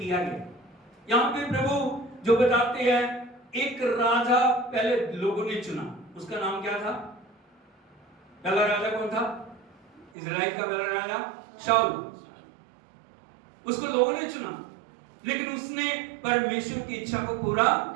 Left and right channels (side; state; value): left; drops out; at 10.1 s